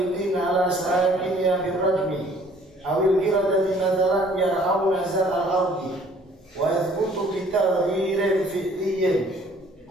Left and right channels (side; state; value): both; normal; correlation 0.57